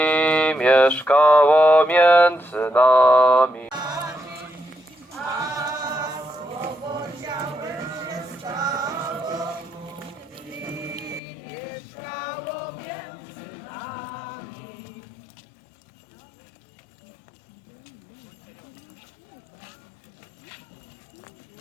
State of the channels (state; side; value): drops out; right; at 11.2 s